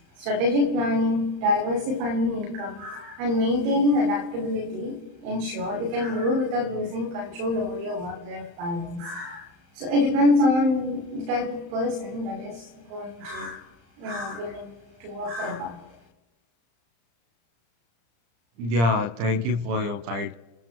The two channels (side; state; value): left; late; 35 ms